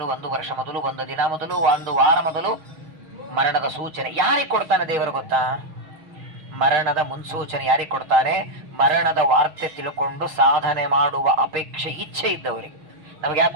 1 ವರ್ಷ ಮೊದಲು, 1 ದಿನ ಮೊದಲು, 1 ವಾರ ಮೊದಲು ಮರಣದ ಸೂಚನೆ ಯಾರಿಗೆ ಕೊಡ್ತಾನೆ ದೇವರು ಗೊತ್ತಾ? ಮರಣದ ಮುನ್ಸೂಚನೆ ಯಾರಿಗೆ ಕೊಡ್ತಾನೆ? ಮರಣದ ವಾರ್ತೆ ತಿಳ್ಕೊಂಡು ಸಾಧನೆ ಮಾಡುವ ಅಪೇಕ್ಷೆ, ಇಚ್ಛೆ ಇದ್ದವರಿಗೆ. ನಮ್ಗೆ ಯಾಕೆ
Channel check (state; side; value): late; left; 6.3 ms